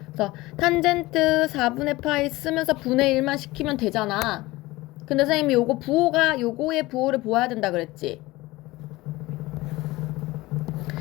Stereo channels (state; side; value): quieter; right; 19.8 dB